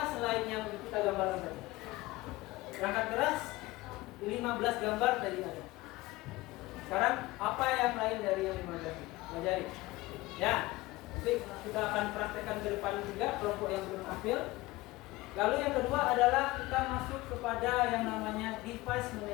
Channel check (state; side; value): quieter; right; 19.8 dB